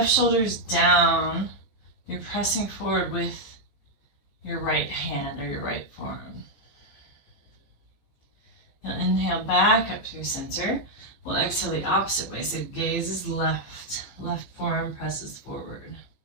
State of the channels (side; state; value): right; late; 15 ms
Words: shoulder's down. You're pressing forward with your right hand or your right forearm. You'll inhale back up through center. We'll exhale the opposite way. So gaze is left. Left forearm presses forward.